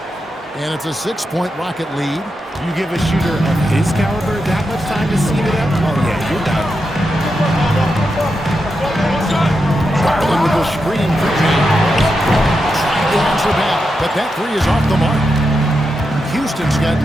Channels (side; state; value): both; normal; correlation 0.87